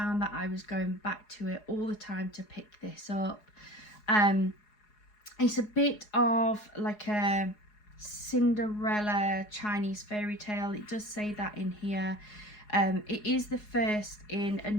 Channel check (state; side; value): late; right; 4.8 ms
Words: that I was going back to it all the time to pick this up. It's a bit of like a Cinderella Chinese fairy tale. It does say that in here. It is the first in a